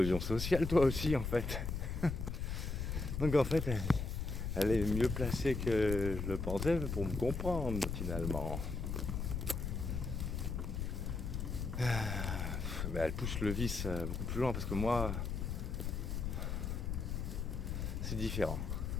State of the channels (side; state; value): left; noise; rumble, 2 dB below the sound